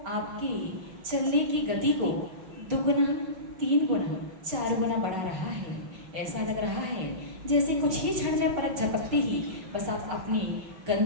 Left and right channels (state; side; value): late; left; 5.4 ms